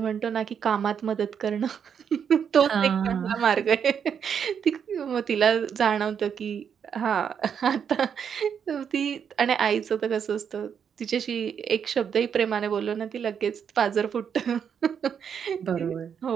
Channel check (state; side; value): quieter; left; 7.5 dB